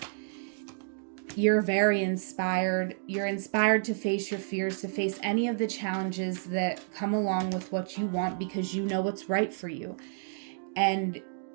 you're very inspired. You're inspired to face your fears, to face any of the challenges that come along with what you want, because you know what's right for you. And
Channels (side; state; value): left; silent; digital silence